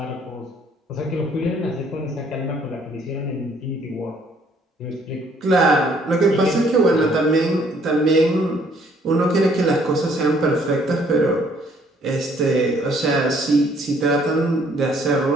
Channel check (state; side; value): normal; both; correlation 0.63